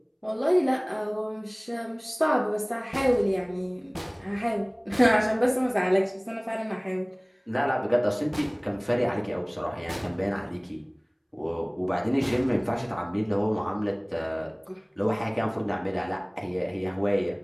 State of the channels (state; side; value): identical; both; correlation 1.00